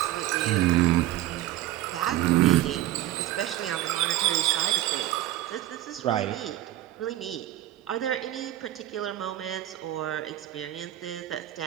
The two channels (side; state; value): left; quieter; 14.2 dB